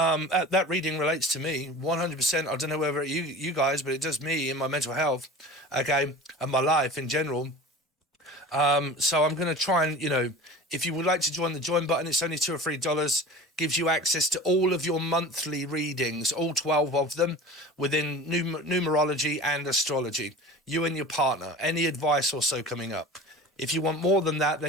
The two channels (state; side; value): normal; both; correlation 0.37